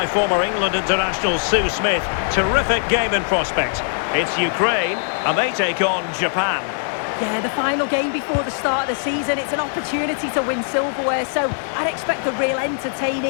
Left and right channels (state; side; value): silent; right; 57 dB below the other